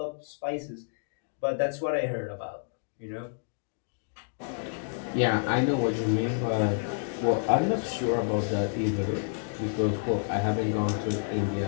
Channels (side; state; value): right; silent; digital silence